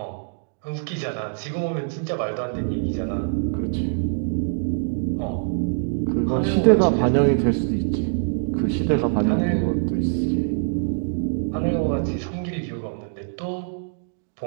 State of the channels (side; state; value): left; silent; digital silence